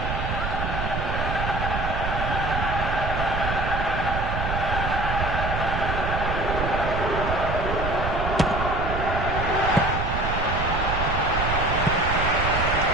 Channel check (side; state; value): right; noise; rumble, 2 dB below the sound